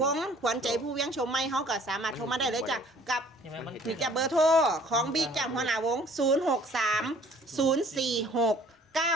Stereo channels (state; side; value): normal; both; correlation 0.55